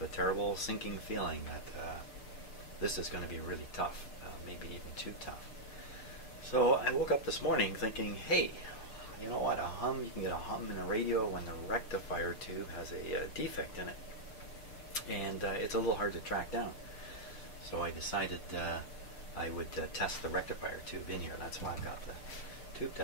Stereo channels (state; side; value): late; right; 6.7 ms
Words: a terrible sinking feeling that this is going to be really tough, maybe even too tough. So I woke up this morning thinking, hey, you know what, you can get a hum in a radio when the rectifier tube has a defect in it. And it's a little hard to track down. So I decided I would test the rectifier tube in here. That's why I got the tube